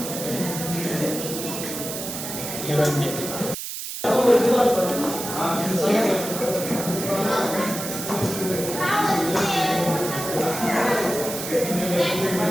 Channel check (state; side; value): noise; right; hiss, 7 dB below the sound